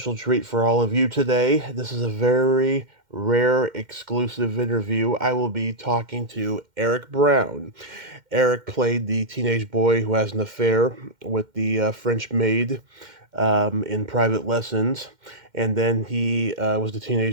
treat for all of you today. This is a very rare exclusive interview. I will be talking to Eric Brown. Eric played the teenage boy who has an affair with the French maid in Private Lessons. And then he was the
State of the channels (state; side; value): late; left; 2.1 ms